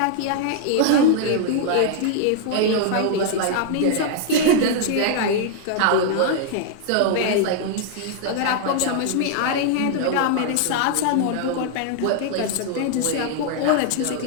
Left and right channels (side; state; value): both; different; correlation 0.00